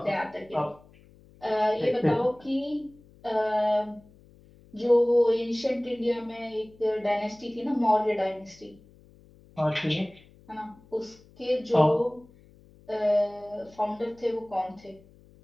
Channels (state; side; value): noise; left; hum, 26 dB below the sound